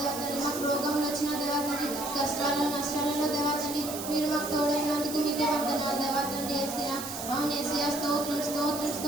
తండ్రి, మాకు రోగంలో వచ్చిన దేవా తండ్రి, కష్టాల్లో నష్టాలలో దేవా తండ్రి, మీరు మాకు తోడైనందుకు మీకే వందనాలు దేవా తండ్రి యేసయ్యా. అవును యేసయ్యా, స్తోత్రం స్తోత్రం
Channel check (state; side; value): noise; right; hiss, 8 dB below the sound